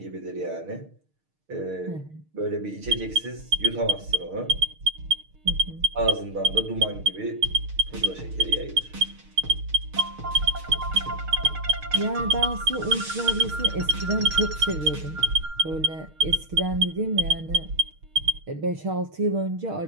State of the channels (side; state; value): left; late; 6.5 ms